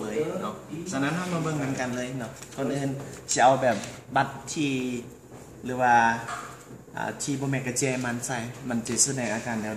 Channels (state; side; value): identical; both; correlation 1.00